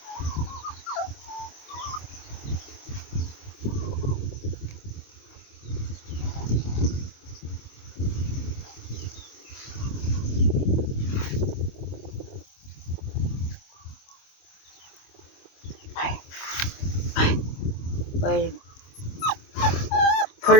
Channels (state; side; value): late; right; 25 ms